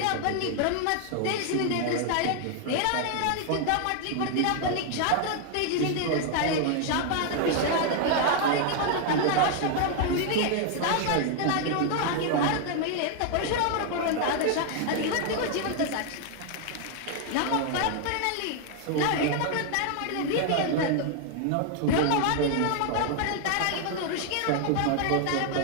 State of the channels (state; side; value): different; both; correlation 0.00